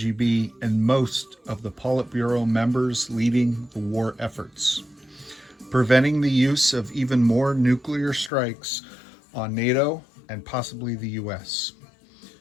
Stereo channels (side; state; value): right; drops out; at 8.3 s